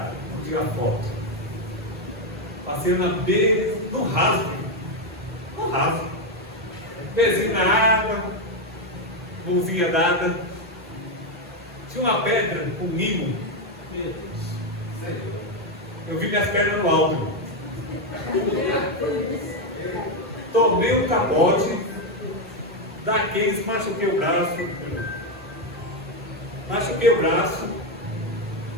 Vamos tirar foto. Passei na beira, no rasgo. No rasgo. Pezinho na água, mãozinha dada. Tinha uma pedra com limo. Meu Deus. Eu vi minhas pernas no alto. Tomei um capote daqueles, machuquei o braço. Machuquei o braço.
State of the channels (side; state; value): both; normal; correlation 0.06